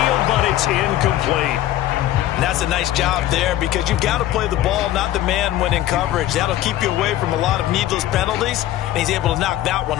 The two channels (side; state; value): right; quieter; 13.5 dB